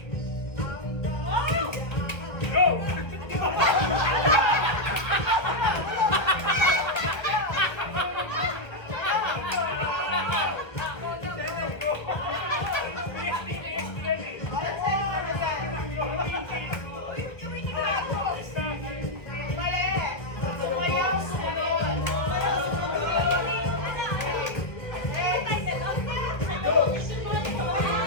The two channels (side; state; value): right; late; 1.4 ms